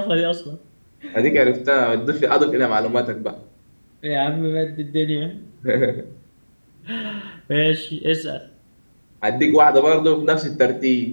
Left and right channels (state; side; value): inverted; both; correlation -1.00